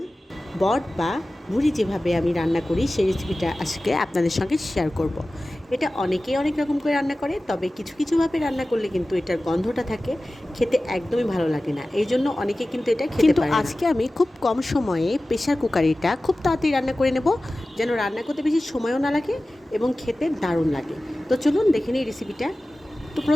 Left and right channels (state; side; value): normal; both; correlation 0.96